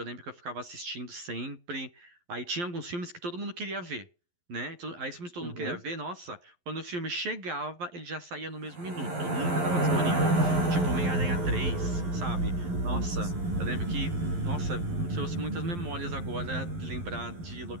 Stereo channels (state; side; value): late; left; 11 ms